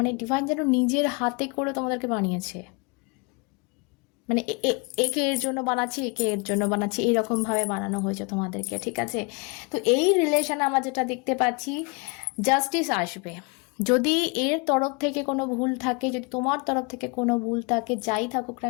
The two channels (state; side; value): quieter; right; 30.7 dB